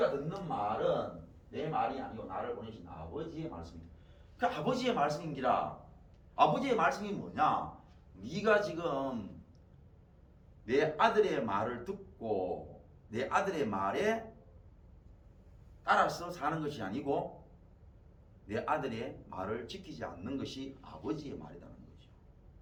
듣는 말은 내 말이 아니고 나를 보내신 아버지의 말씀입니다. 그 아버지의 말씀인기라. 아버지의 말씀이 뭐냐? 네가 지금 내 아들의 말을 듣고 내 아들의 말에 따라서 사는 것이 아니고 내 아들의 말을 지키지 않는 것이 아버지의 말이라는 거죠.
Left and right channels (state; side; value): identical; both; correlation 1.00